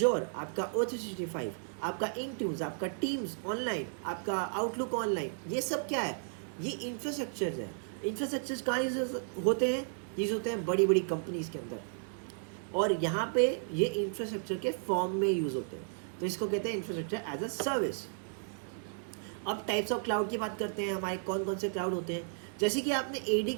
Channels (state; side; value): silent; left; digital silence